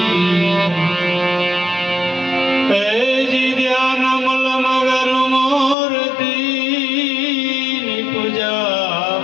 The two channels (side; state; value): right; drops out; at 5.8 s